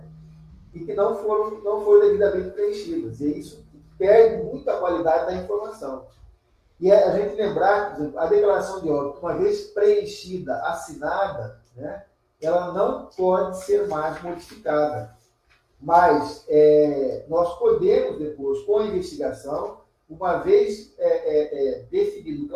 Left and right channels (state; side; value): identical; both; correlation 1.00